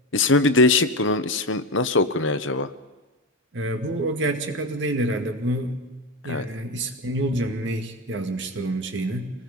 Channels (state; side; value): normal; both; correlation 0.18